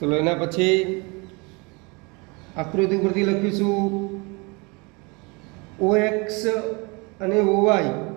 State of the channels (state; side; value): quieter; left; 28.6 dB